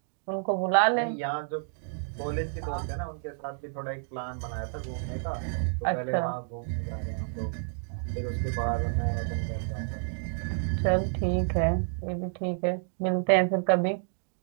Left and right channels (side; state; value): left; silent; digital silence